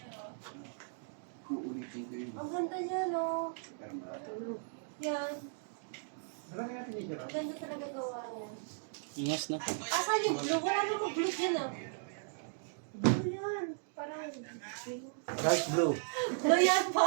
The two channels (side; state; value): left; silent; digital silence